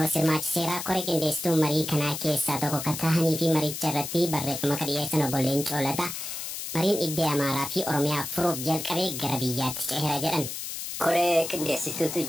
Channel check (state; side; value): noise; left; hiss, 6 dB below the sound